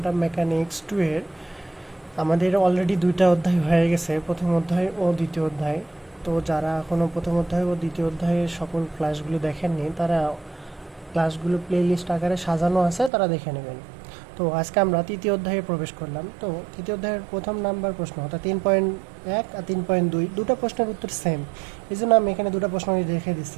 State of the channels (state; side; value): drops out; left; at 13.1 s